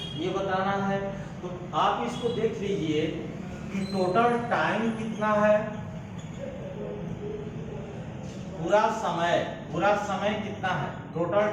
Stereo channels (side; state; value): both; identical; correlation 1.00